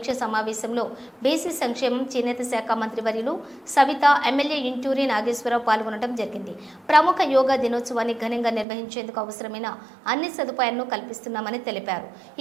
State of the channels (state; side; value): drops out; left; at 8.7 s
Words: సమావేశంలో బీసీ సంక్షేమం చేనేత శాఖ మంత్రివర్యులు సవిత, ఎమ్మెల్యే ఇంటూరి నాగేశ్వరరావు పాల్గొనడం జరిగింది. ప్రముఖ యోగా దినోత్సవాన్ని ఘనంగా నిర్వహించేందుకు అవసరమైన అన్ని సదుపాయాలను కల్పిస్తున్నామని తెలిపారు.